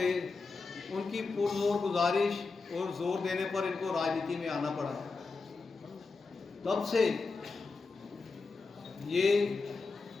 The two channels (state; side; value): quieter; right; 4.2 dB